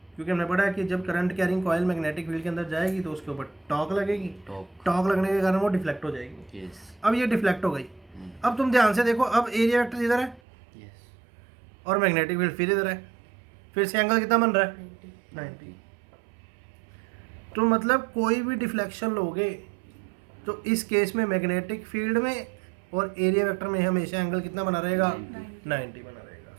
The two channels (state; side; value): drops out; left; at 10.4 s